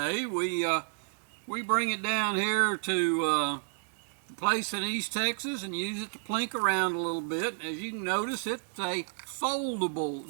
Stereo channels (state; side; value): silent; left; digital silence